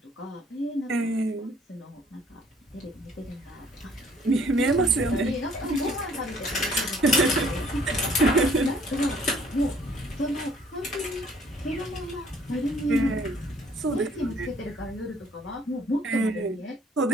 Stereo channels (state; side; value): normal; both; correlation 0.60